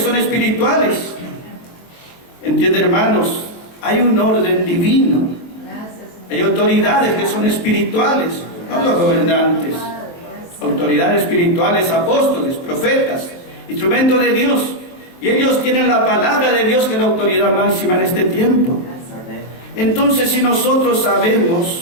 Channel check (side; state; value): right; late; 23 ms